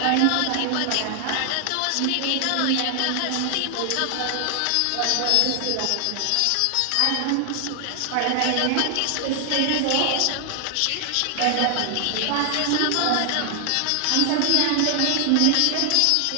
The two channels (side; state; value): both; different; correlation 0.00